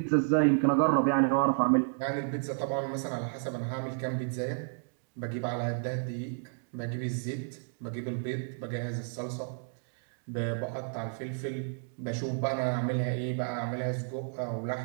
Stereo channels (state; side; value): silent; left; digital silence